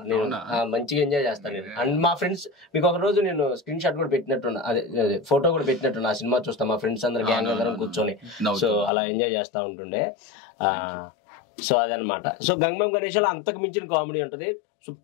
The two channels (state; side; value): drops out; right; at 8.9 s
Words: నేను మంచిగా ఎంజాయ్ చేస్తాను నేను. అండ్ మా ఫ్రెండ్స్, మీకు ఒక రోజు నేను స్క్రీన్ షాట్ కూడా పెట్టినట్టున్నా, అదే ఫోటో కూడా పెట్టినట్టున్నా. ఆ సినిమా చూస్తా మా ఫ్రెండ్స్ అందరు గ్యాంగ్ అందరం కూర్చొని, సో అలా ఎంజాయ్ చేస్తా ఉంటుండే. సో అదనమాట. సో గంగం గణేష్ లో అంతకు మించిన కామెడీ ఉంటది,